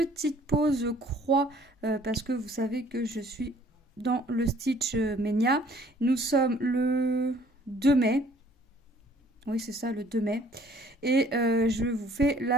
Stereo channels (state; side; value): normal; both; correlation 0.57